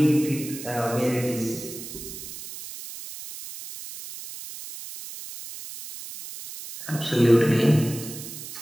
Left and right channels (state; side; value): noise; right; hiss, 12 dB below the sound